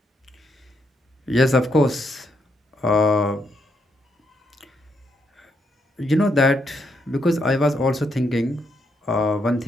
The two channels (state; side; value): normal; both; correlation 0.78